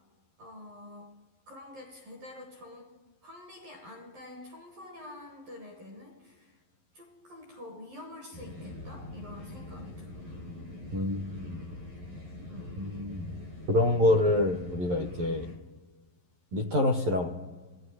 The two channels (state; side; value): late; left; 11 ms